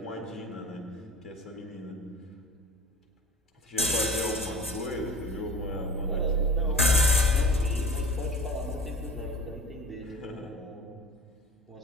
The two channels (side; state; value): both; normal; correlation 0.40